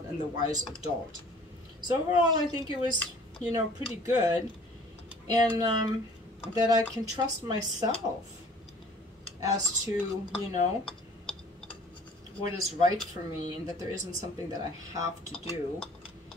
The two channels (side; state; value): both; normal; correlation 0.52